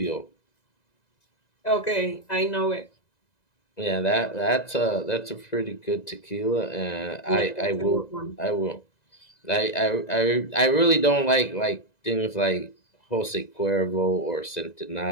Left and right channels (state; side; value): late; right; 2.0 ms